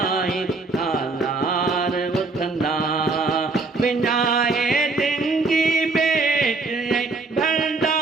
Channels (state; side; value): quieter; left; 3.7 dB